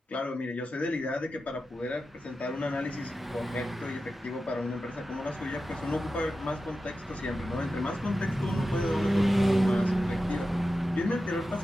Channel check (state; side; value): normal; both; correlation 0.92